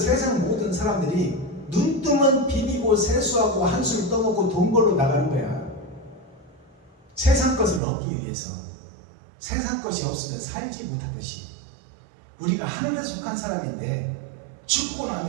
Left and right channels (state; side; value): drops out; left; at 7.8 s